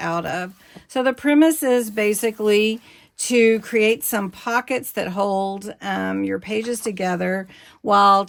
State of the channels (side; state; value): both; identical; correlation 1.00